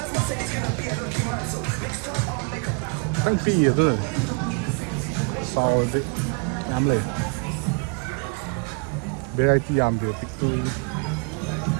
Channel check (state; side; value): quieter; left; 34.9 dB